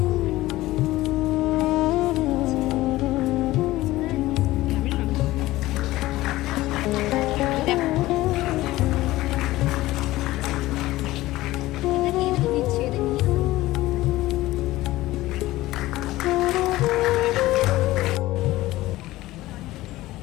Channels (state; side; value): quieter; right; 17.3 dB